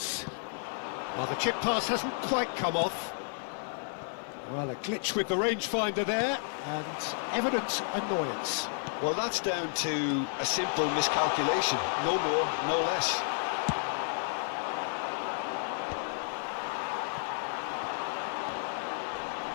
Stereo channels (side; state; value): right; silent; digital silence